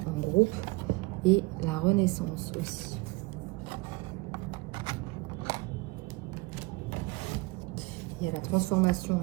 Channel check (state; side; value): quieter; left; 24.2 dB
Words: en groupe, et la renaissance aussi. Il y a la transformation